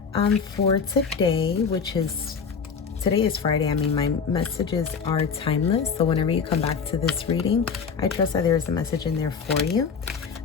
for today, today is Friday. I mean, my messages are timeless. So whenever you come back to this reading, I trust that there is a message in there for you.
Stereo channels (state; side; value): quieter; right; 5.8 dB